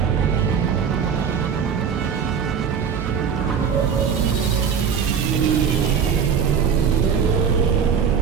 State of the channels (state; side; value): quieter; left; 6.9 dB